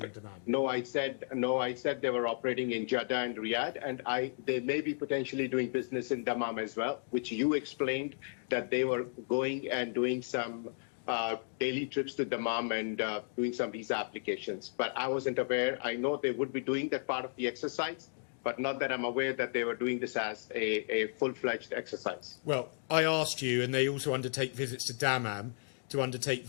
and Dammam. No, I said they were operating in Jeddah and Riyadh, and they may be potentially doing business in Dammam as well, which you explained that they were going and doing some daily trips to Dammam and doing some visa applications. But I wasn't aware. I know they would be doing that part of the exercise, but not that I'm aware that they were doing this as a full-fledged exercise. Well, I asked you, and they also undertake visits to Dammam to undertake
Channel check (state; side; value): silent; right; digital silence